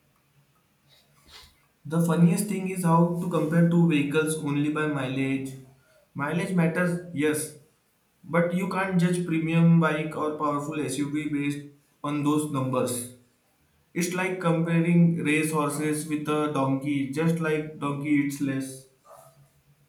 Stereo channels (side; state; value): both; identical; correlation 1.00